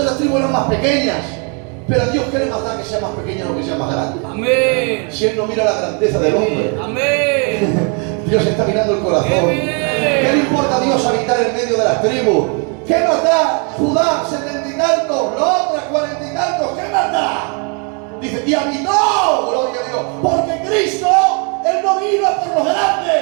las tribus eran más pequeñas. Pero a Dios, ¿qué le más da que sea más pequeña o que sea más grande? Amén. Si Él no mira la grandeza del hombre, Amén. Dios está mirando el corazón. ¡Qué bien! ¿Qué le importa a Dios habitar en medio de las tribus? ¿Qué más da Judá 70 y tantos, la otra 40 y tantos? ¿Qué más da? Dice, y habitó, gloria a Dios, porque Cristo, Él no vino a por los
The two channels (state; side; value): quieter; left; 36.7 dB